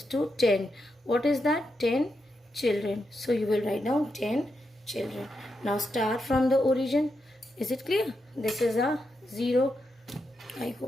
to 10. What is that? 10 children. So you will write down 10 children. Now start from the origin. Is it clear? This is a 0. I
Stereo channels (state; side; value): normal; both; correlation 0.85